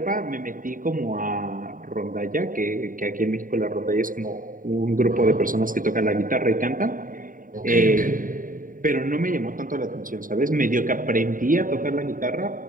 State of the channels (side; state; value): left; late; 0.39 ms